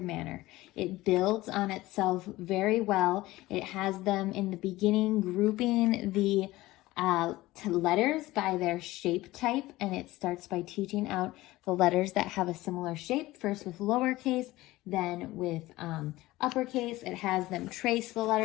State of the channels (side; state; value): right; quieter; 18.1 dB